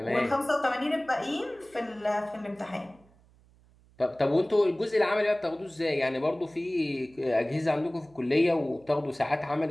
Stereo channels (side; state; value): right; noise; hum, 29 dB below the sound